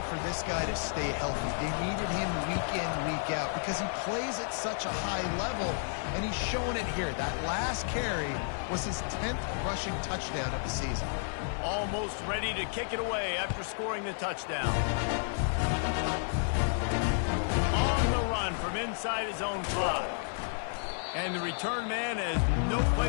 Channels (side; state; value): right; silent; 57 dB below the other